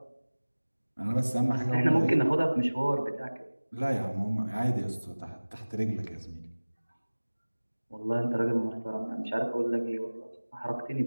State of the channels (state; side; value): inverted; both; correlation -1.00